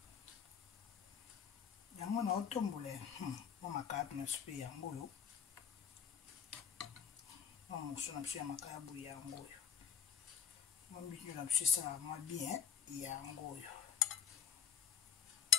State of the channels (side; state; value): right; quieter; 7.9 dB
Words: yango na otombole makaya na supe yango yo mosu na biso ya makayabu yango oyo mbinyo na biso esala mwa bien yango oyo